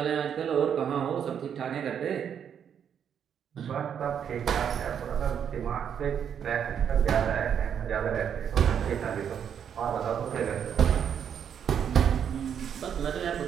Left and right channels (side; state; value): left; quieter; 8.3 dB